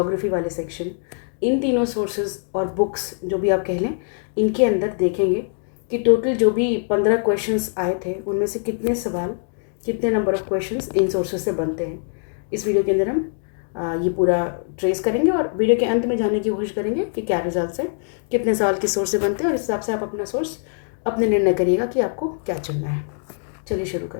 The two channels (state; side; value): silent; right; digital silence